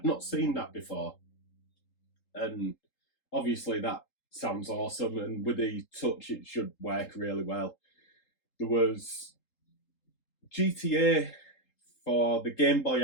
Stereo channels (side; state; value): right; late; 3.8 ms